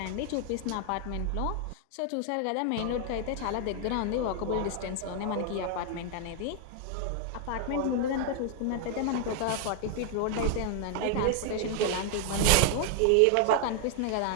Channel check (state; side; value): different; both; correlation 0.00